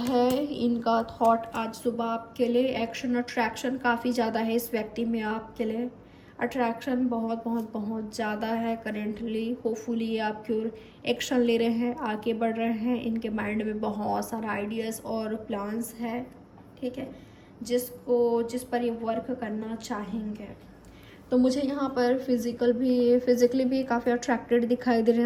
इनका थॉट आज सुबह आपके लिए? एक्शन अट्रैक्शन काफ़ी ज़्यादा है इस व्यक्ति में आपके लिए। अट्रैक्शन बहुत बहुत बहुत ज़्यादा है करेंटली। होपफुली ये आपकी ओर एक्शन ले रहे हैं, आगे बढ़ रहे हैं। इनके माइंड में बहुत सारा आइडियाज़ और प्लान्स है, ठीक है, जिस पर ये वर्क करना चाहेंगे। तो मुझे यहाँ पर फिज़िकली भी काफ़ी अट्रैक्टेड दिखाई दे रहे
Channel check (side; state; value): both; identical; correlation 1.00